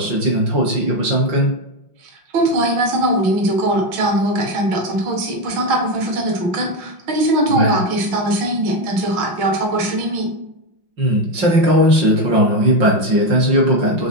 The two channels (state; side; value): late; left; 5.6 ms